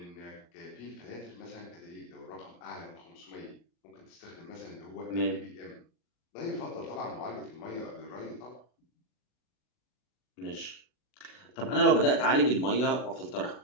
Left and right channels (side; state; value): right; late; 40 ms